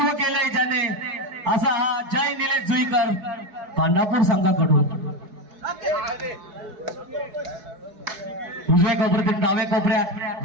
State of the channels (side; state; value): left; late; 4.7 ms